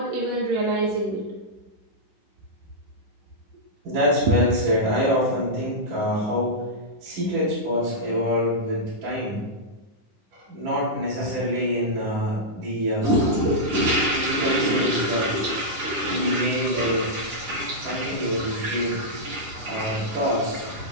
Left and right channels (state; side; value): late; left; 9.9 ms